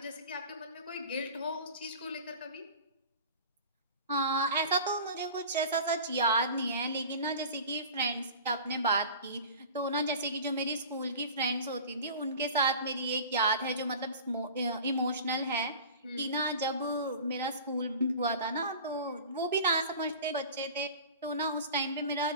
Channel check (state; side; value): inverted; both; correlation -0.39